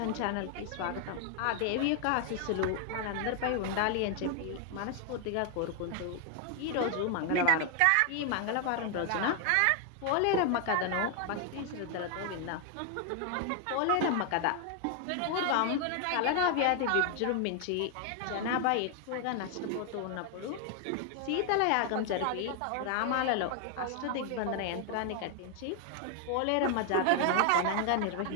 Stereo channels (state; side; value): different; both; correlation 0.00